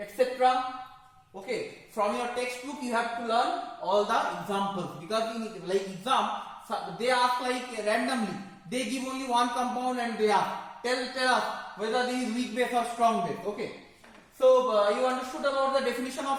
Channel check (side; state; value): both; identical; correlation 1.00